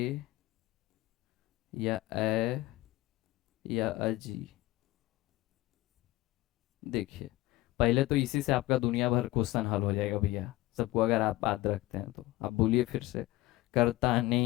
या ए, या अजी। देखिए, पहले तो इसी से आपका दुनिया भर क्वेश्चन हल हो जाएगा भैया सबको, अगर आप याद रखते हैं तो। आप बोलिए फिर से। कर्ता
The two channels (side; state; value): right; quieter; 17.9 dB